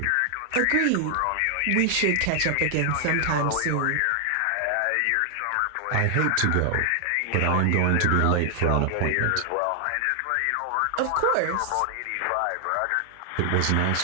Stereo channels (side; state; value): both; different; correlation 0.00